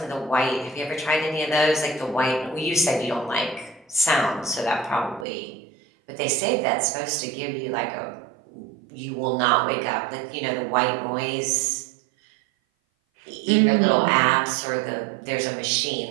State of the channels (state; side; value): drops out; left; at 5.2 s